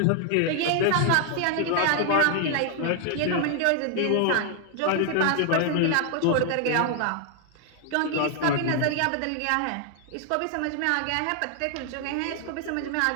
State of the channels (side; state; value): both; different; correlation 0.00